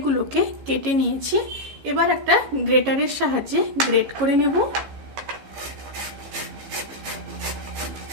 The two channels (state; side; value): late; left; 15 ms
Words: কেটে নিয়েছি। এবার একটা গ্রেটারের সাহায্যে গ্রেট করে নেব।